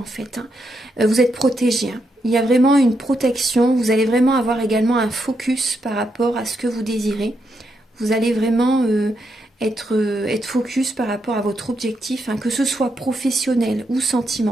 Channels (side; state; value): both; normal; correlation 0.81